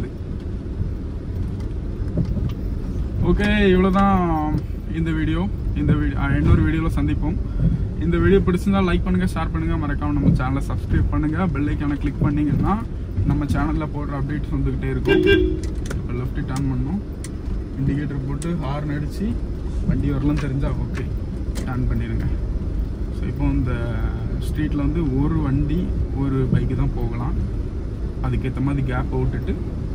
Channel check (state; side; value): identical; both; correlation 1.00